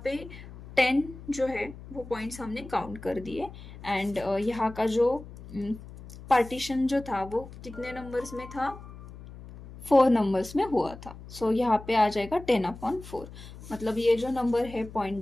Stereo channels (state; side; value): noise; left; hum, 15 dB below the sound